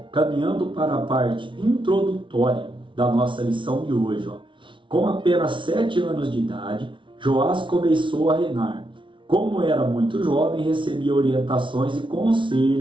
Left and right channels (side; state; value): left; late; 0.24 ms